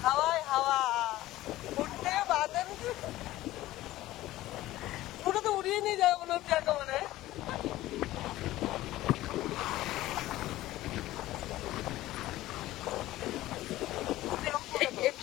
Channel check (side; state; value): right; quieter; 16.1 dB